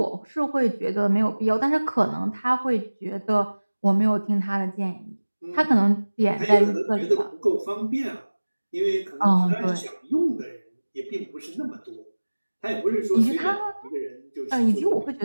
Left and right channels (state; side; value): inverted; both; correlation -1.00